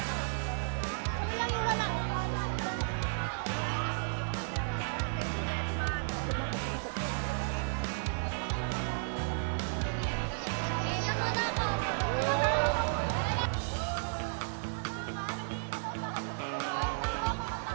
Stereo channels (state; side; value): silent; left; digital silence